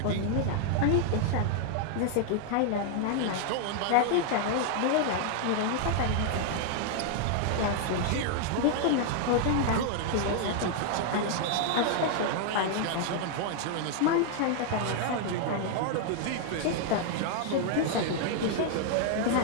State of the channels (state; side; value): different; both; correlation 0.00